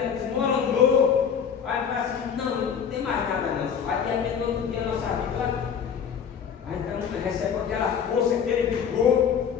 desmoronou. Aí fala assim, não tem mais nada não. Aí de repente outro dia a nossa vida, aí então recebe aquela força, aquele vigor,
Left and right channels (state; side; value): quieter; right; 7.4 dB